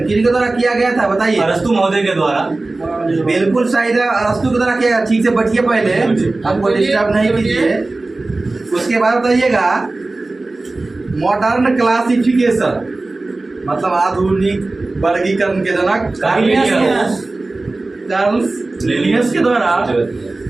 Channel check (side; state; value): left; quieter; 3.1 dB